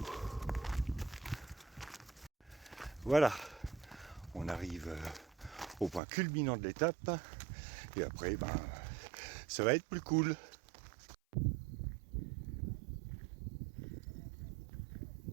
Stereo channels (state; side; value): drops out; left; at 6.0 s